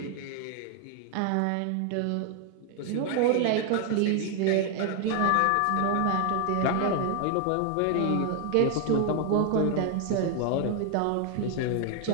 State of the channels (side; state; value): both; different; correlation 0.00